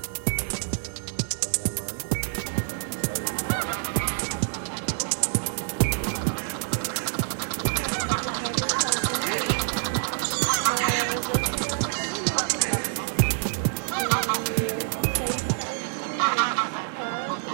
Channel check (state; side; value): silent; left; 60 dB below the other